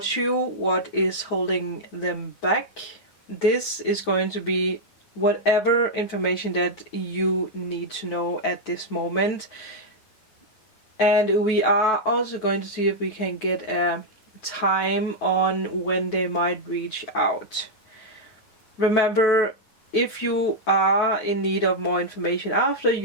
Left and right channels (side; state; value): right; late; 9.3 ms